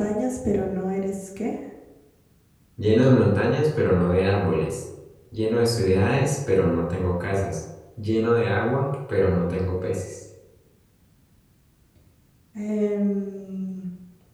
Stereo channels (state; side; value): identical; both; correlation 1.00